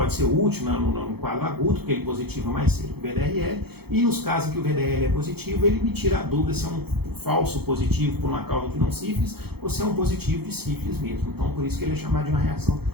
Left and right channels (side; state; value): left; late; 0.96 ms